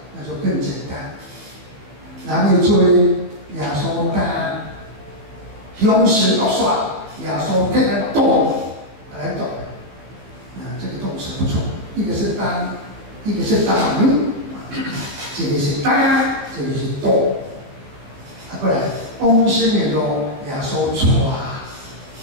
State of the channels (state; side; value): late; left; 15 ms